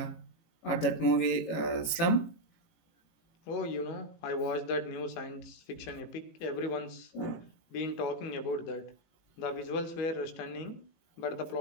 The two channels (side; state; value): right; late; 18 ms